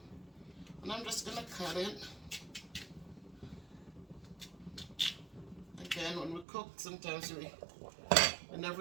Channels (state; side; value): drops out; left; at 6.5 s